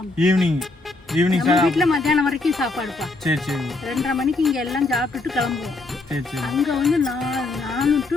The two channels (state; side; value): quieter; right; 3.2 dB